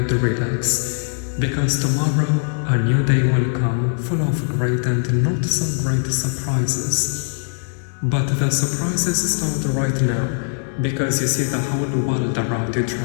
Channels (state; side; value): silent; right; digital silence